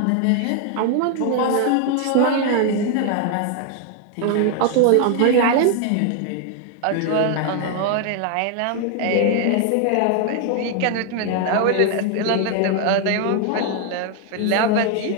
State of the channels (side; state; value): both; different; correlation 0.00